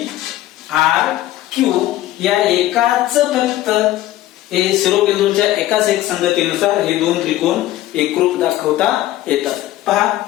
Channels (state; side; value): quieter; right; 14.8 dB